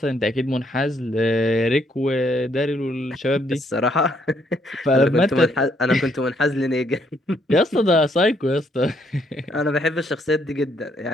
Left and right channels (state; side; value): normal; both; correlation 0.70